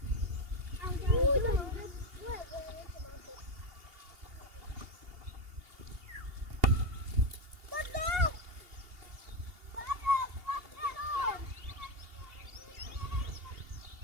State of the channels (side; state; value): left; late; 2.8 ms